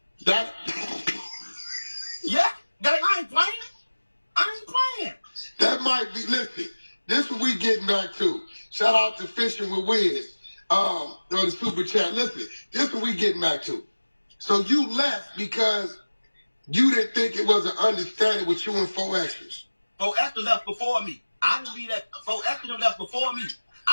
That. Yeah. I ain't playing. That might be. Listen, this what we getting back to. Shout out to Fishing with Wiz. On the super chat. Listen, this what we getting back to. So you left because you didn't think it was an understanding with you and 4 Extras. 4 Extra left before me. I didn't leave that. 4 Extra left before me.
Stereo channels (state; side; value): inverted; both; correlation -1.00